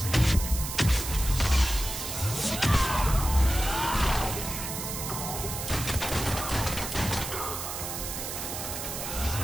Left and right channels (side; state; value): right; noise; hiss, 6 dB below the sound